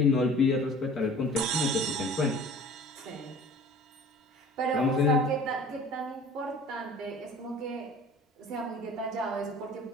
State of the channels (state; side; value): normal; both; correlation 0.45